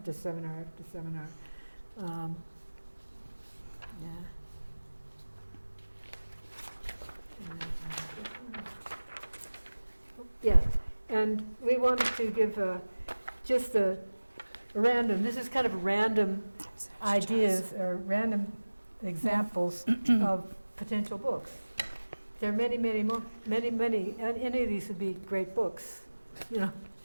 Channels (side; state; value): both; inverted; correlation -1.00